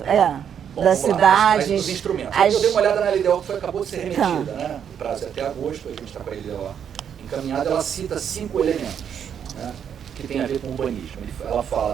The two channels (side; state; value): left; quieter; 8.3 dB